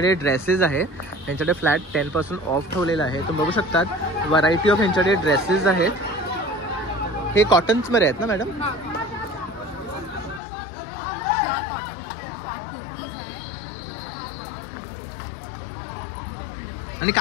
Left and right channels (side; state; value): right; drops out; at 10.4 s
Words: ड्रेसेस आहे. यांच्याकडे फ्लॅट 10% ऑफ ठेवलेलं आहे. तुम्ही बघू शकतात व्हरायटी ऑफ यांच्याकडे ड्रेसेस आहेत. हे कॉटन्समध्ये आहेत ना मॅडम? आणि